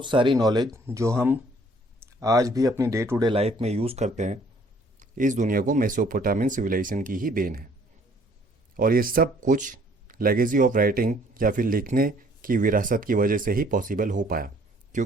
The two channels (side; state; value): both; normal; correlation 0.60